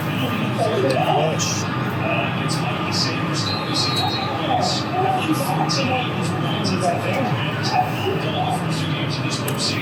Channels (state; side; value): identical; both; correlation 1.00